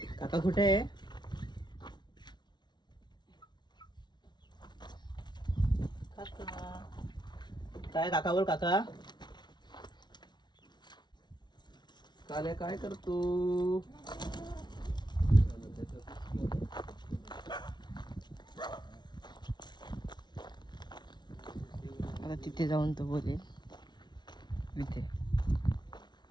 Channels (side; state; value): right; late; 0.21 ms